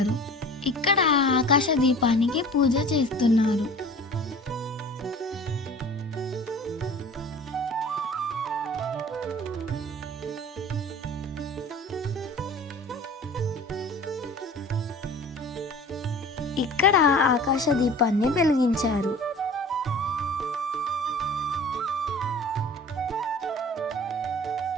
ఇక్కడ ఆకాశ దీపానికి పూజ చేస్తున్నారు. ఇక్కడ ఆకాశ దీపాన్ని వెలిగించారు.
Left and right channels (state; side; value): normal; both; correlation 0.42